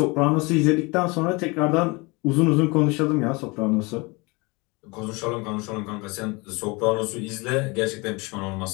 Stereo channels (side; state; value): right; quieter; 26.6 dB